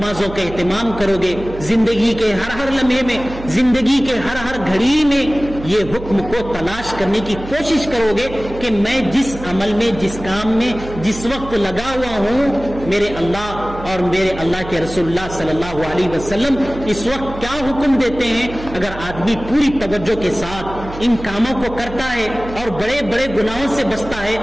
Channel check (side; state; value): right; noise; hum, 12 dB below the sound